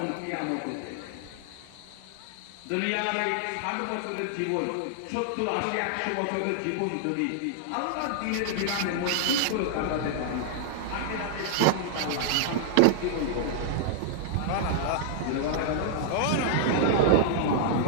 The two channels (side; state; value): both; different; correlation -0.01